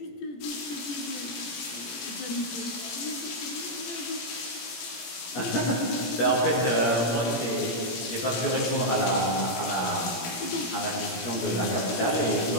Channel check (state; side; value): late; right; 17 ms